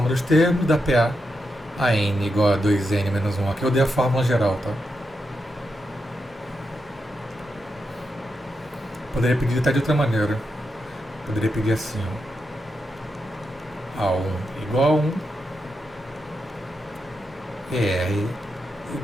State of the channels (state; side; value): normal; both; correlation 0.86